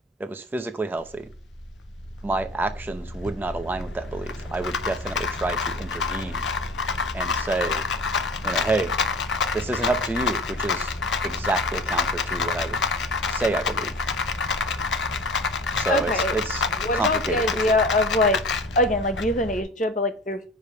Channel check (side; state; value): both; normal; correlation 0.39